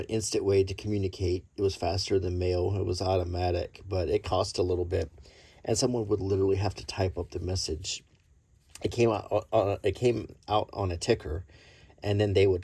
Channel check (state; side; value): identical; both; correlation 1.00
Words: instant way to communicate. It was faster than mail. It was automatic, but it cost a little bit, and someone would literally have to type up the message. It came out on a ticker, and then they